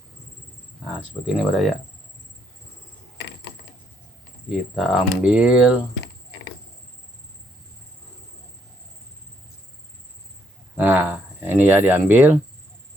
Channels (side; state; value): both; normal; correlation 0.72